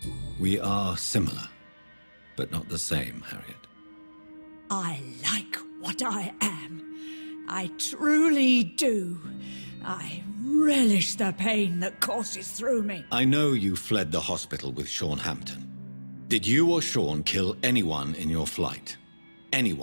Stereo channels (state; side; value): inverted; both; correlation -1.00